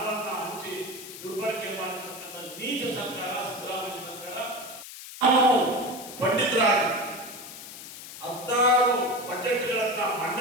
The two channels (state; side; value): noise; left; hiss, 13 dB below the sound